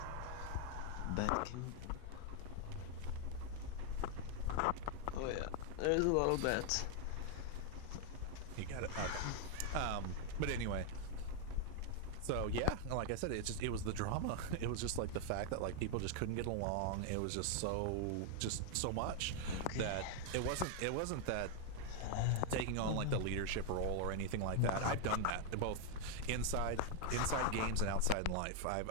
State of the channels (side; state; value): both; different; correlation 0.00